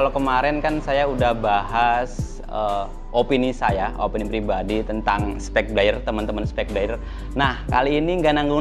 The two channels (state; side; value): identical; both; correlation 1.00